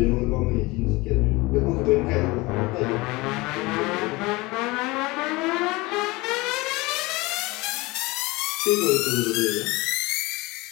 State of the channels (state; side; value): quieter; right; 22.7 dB